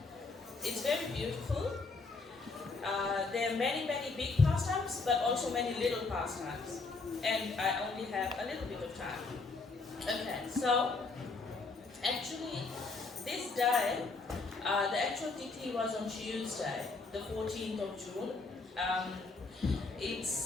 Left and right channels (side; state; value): right; quieter; 3.9 dB